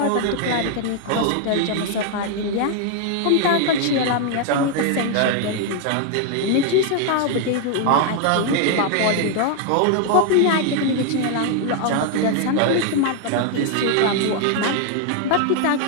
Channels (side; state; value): both; different; correlation 0.00